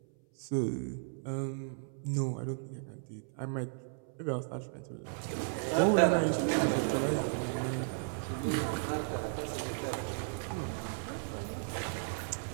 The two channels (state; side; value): silent; left; 55 dB below the other